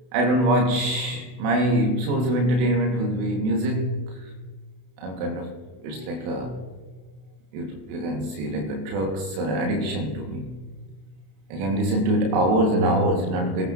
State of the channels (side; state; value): left; late; 32 ms